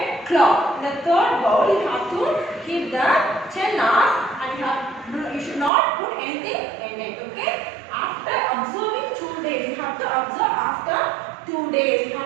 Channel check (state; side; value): drops out; left; at 5.7 s